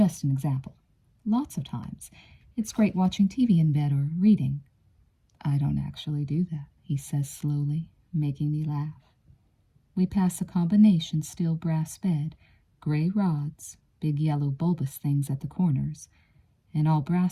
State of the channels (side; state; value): both; identical; correlation 1.00